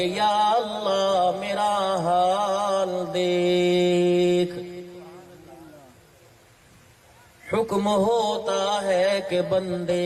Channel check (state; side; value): identical; both; correlation 1.00